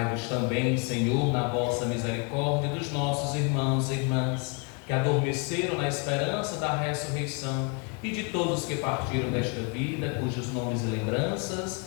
também, Senhor, na vossa misericórdia, dos nossos irmãos e irmãs, que adormeceram na esperança da ressurreição, e de todos que partiram desta vida, cujos nomes e lembranças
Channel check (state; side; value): quieter; right; 33.6 dB